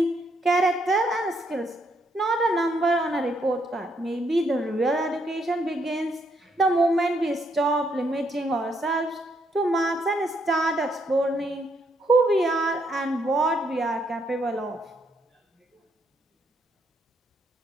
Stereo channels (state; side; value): normal; both; correlation 0.74